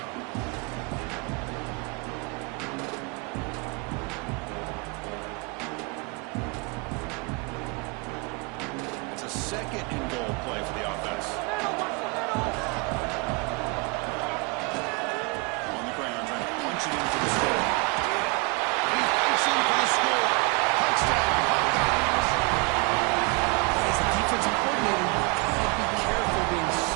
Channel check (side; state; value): left; quieter; 29.6 dB